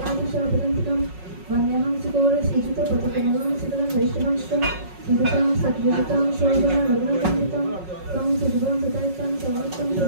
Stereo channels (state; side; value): late; left; 5.4 ms